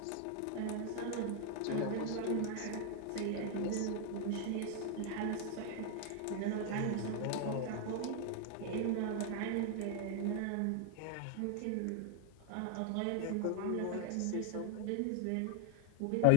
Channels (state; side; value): different; both; correlation 0.00